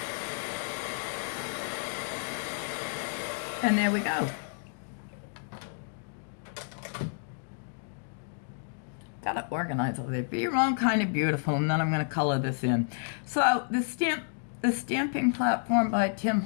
And there we go. Got it organized over there. Be your own kind of beautiful, and then I'm going to color this in. So the stamping platform by Tim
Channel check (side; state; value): right; silent; digital silence